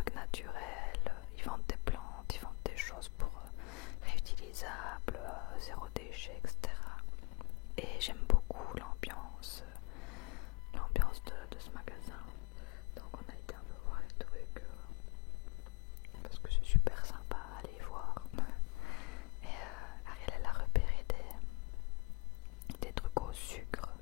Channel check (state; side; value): quieter; right; 28.1 dB